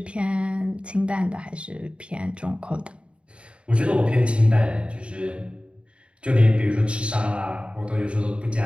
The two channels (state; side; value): late; left; 0.058 ms